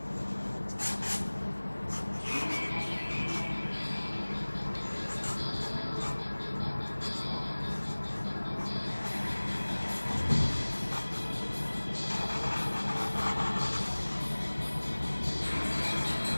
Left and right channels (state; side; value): inverted; both; correlation -1.00